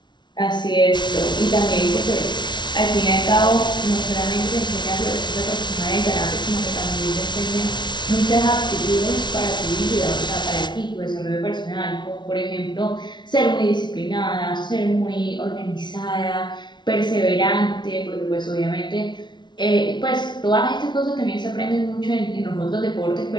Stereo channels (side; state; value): right; late; 0.21 ms